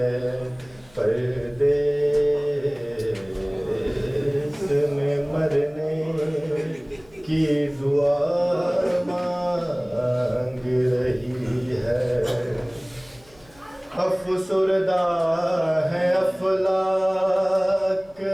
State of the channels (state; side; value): noise; left; hum, 28 dB below the sound